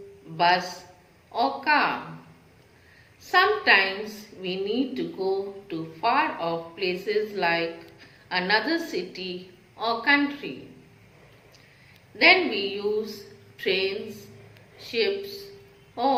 bus or car. Sometimes we need to go to far off places like another city or country. Then we use trains, ships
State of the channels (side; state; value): both; identical; correlation 1.00